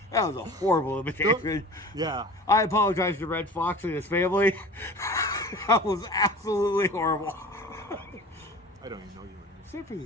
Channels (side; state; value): both; normal; correlation 0.39